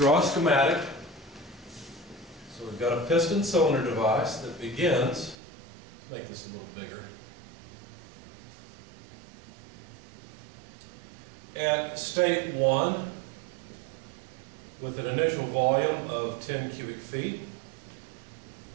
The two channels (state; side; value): drops out; left; at 5.4 s